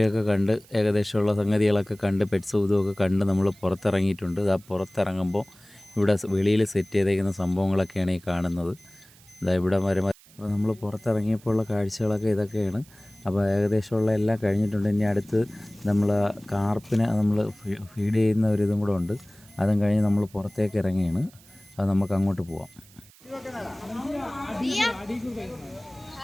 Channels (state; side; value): noise; right; hiss, 26 dB below the sound